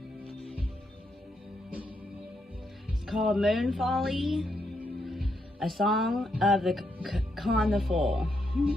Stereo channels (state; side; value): normal; both; correlation 0.80